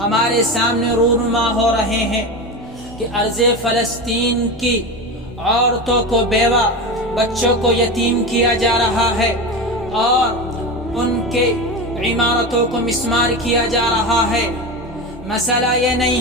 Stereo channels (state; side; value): normal; both; correlation 0.23